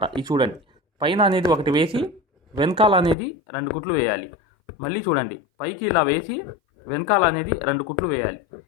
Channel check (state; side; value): drops out; right; at 3.2 s